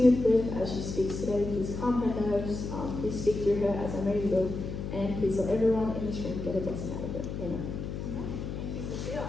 with Liv as she speaks today. Please calm her nerves. Please speak through her as I know you will. And please let everyone in this room get a blessing out of it. Amen. Thank you, Sophia.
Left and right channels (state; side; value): noise; left; hum, 6 dB below the sound